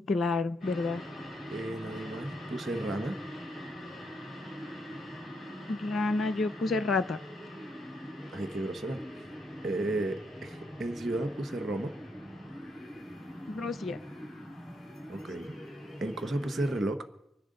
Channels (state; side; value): normal; both; correlation 0.77